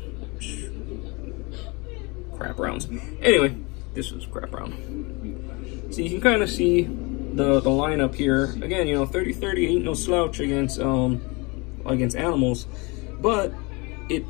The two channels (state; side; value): quieter; right; 27.6 dB